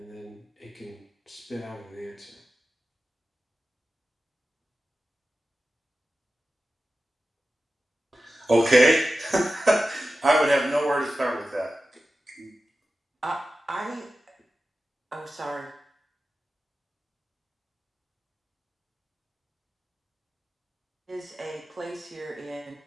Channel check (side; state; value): both; normal; correlation 0.94